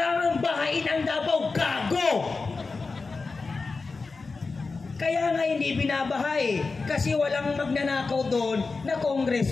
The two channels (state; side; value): quieter; right; 4.1 dB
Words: bahain ang Davao. Gago! Kaya nga hindi binabahay kasi walang magnanakaw doon na